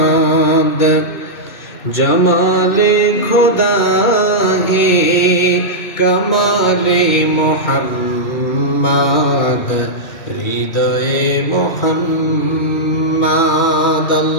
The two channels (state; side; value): late; right; 2.1 ms